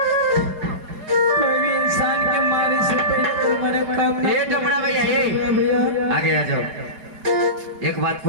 कोई भी इंसान के मारे से पहले तुम्हारे काम ये डमरा भैया ये भैया आगे आ जाओ। एक बात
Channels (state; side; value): late; left; 4.8 ms